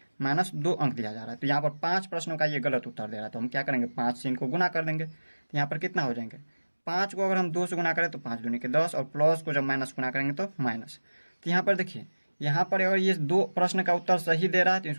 -2 अंक दिया जा रहा है। तो यहाँ पर 5 प्रश्नों का ये गलत उत्तर दे रहा है, तो हम क्या करेंगे? 5 से इनको गुना कर देंगे, तो यहाँ पर कितना हो जाएंगे? 5 को अगर हम 2 से गुना करें तो 5 दूनी के 10, और प्लस को जब माइनस गुना करेंगे तो माइनस। तो यहाँ पर देखिए यहाँ पर अगर ये 2 प्रश्न का उत्तर सही दे रहा है तो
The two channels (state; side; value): inverted; both; correlation -1.00